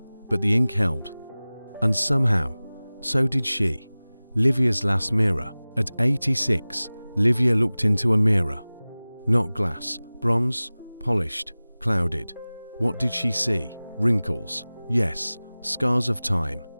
but the ink held. And somehow, so did she. Livia's last mirror. At 86, Livia looked into a mirror. Not glass, bronze, polished, clouded. What did she see? wrinkles, yes, scars of time,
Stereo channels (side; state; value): both; inverted; correlation -0.99